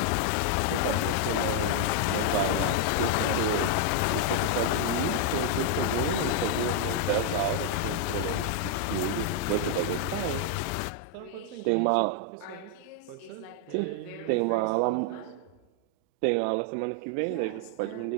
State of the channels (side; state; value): both; different; correlation 0.00